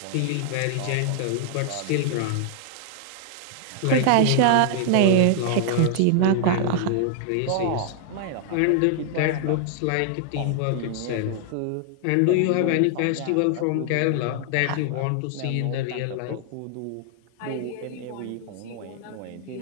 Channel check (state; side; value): different; both; correlation -0.01